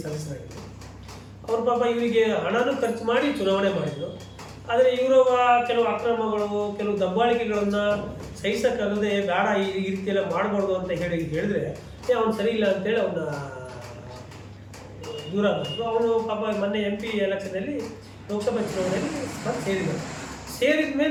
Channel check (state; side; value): identical; both; correlation 1.00